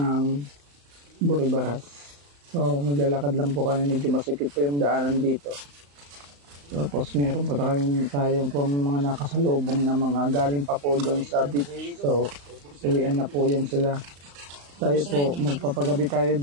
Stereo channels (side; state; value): left; late; 35 ms